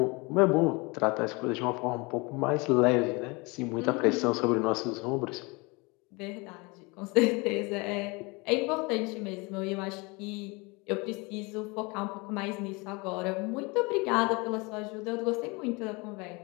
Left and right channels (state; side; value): quieter; right; 27.0 dB